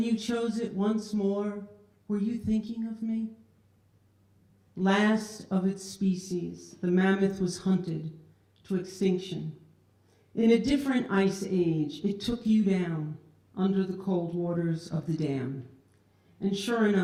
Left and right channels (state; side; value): identical; both; correlation 1.00